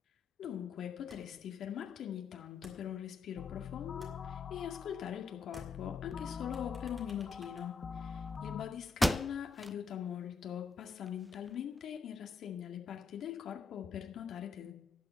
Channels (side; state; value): right; quieter; 4.8 dB